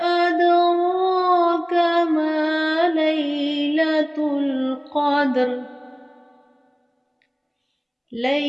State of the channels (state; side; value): identical; both; correlation 1.00